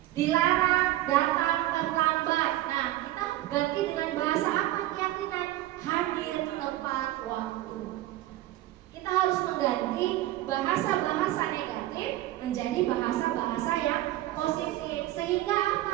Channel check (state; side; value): quieter; left; 15.4 dB